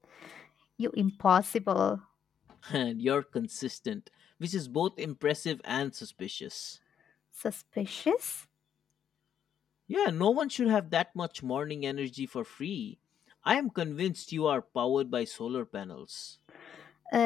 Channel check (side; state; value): right; quieter; 8.8 dB